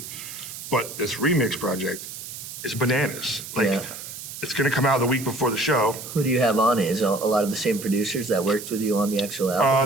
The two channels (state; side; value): noise; right; hiss, 11 dB below the sound